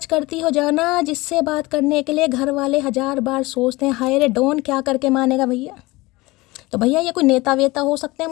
करती हो जाना जिससे बात करने के लिए घर वाले 1000 बार सोचते हैं। हाय रे डॉन, क्या करके मानेगा भैया, तो भैया ये कोई नेता वेता हो सकते हैं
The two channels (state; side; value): quieter; right; 21.3 dB